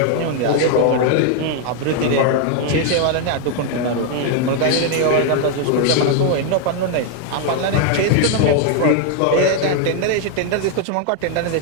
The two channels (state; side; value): different; both; correlation 0.01